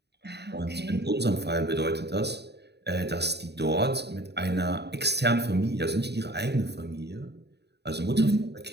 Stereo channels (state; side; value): late; left; 0.49 ms